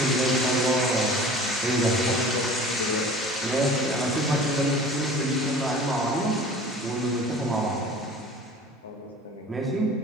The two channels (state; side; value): normal; both; correlation 0.43